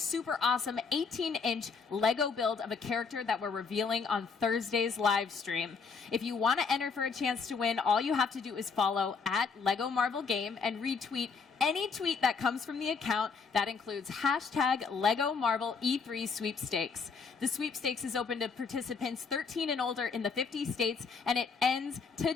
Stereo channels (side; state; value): right; quieter; 5.3 dB